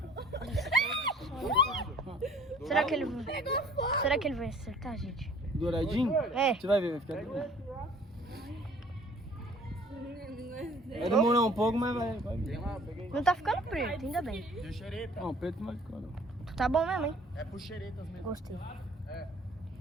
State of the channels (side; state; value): both; normal; correlation 0.53